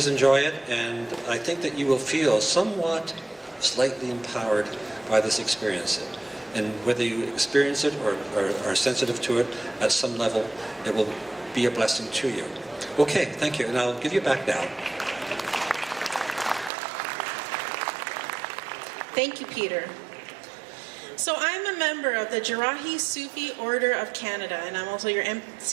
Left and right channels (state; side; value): drops out; left; at 16.7 s